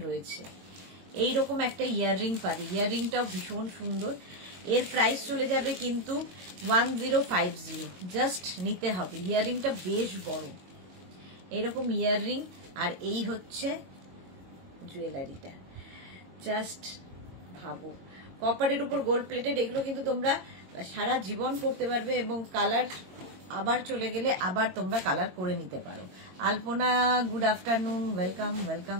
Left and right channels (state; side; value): late; left; 22 ms